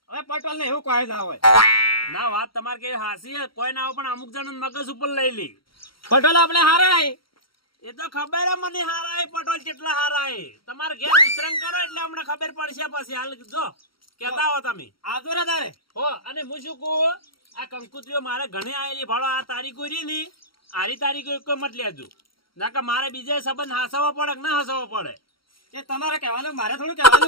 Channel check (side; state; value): right; late; 0.74 ms